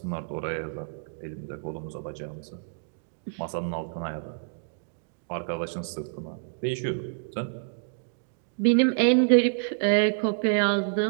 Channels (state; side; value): silent; left; digital silence